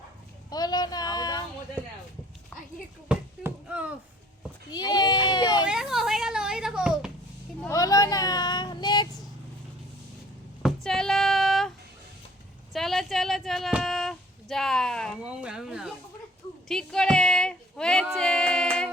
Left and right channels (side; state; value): both; normal; correlation 0.54